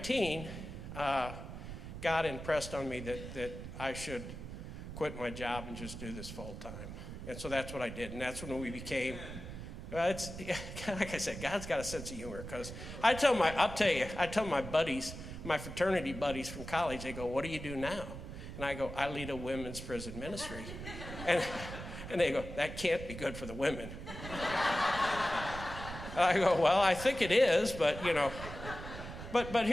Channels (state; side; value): noise; right; rumble, 9 dB below the sound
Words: God impressed on me that I should quit my job and just do this full time. And so that's what I did. And that's when we became, like I said, God's got a sense of humor. Because I tell my buddies, my fraternity buddies from college, they go, what do you do now? And I go, I lead a women's prison ministry. And they go, that can't be good for the women. I go, well, I think it is, but but